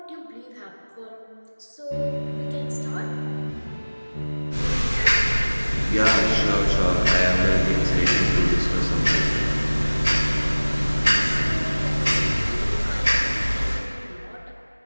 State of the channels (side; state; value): both; inverted; correlation -1.00